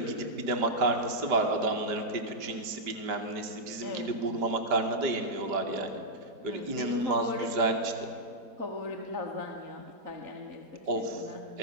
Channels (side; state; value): left; late; 5.0 ms